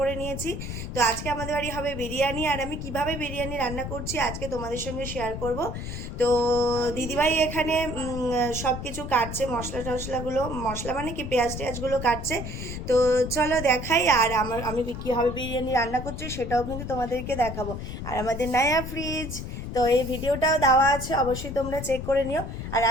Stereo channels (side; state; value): left; noise; rumble, 7 dB below the sound